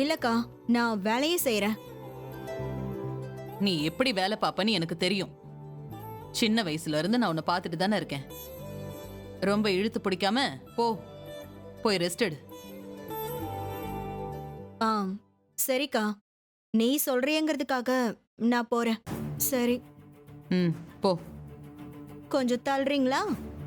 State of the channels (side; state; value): both; identical; correlation 1.00